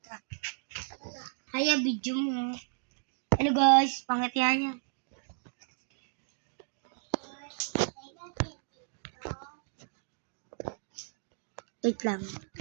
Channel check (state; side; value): silent; left; digital silence